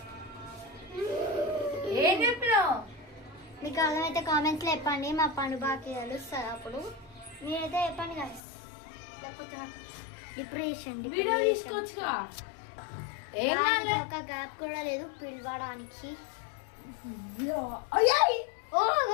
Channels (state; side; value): drops out; right; at 8.4 s